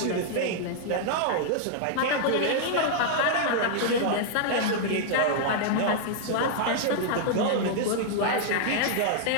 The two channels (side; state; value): both; different; correlation -0.01